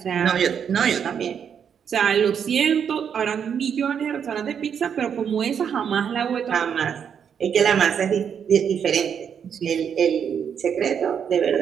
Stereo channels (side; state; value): left; quieter; 7.7 dB